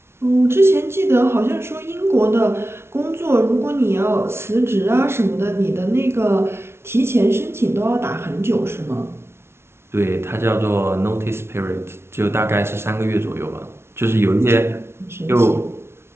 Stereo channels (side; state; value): left; late; 0.12 ms